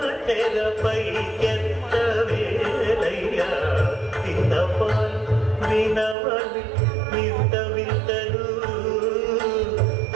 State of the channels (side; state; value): left; drops out; at 6.2 s